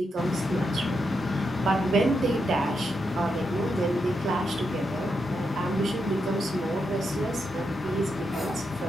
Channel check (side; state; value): both; normal; correlation 0.83